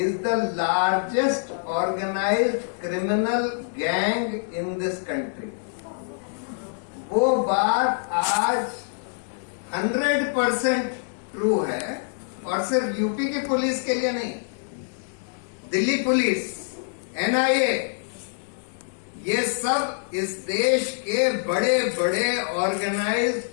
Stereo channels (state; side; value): silent; right; digital silence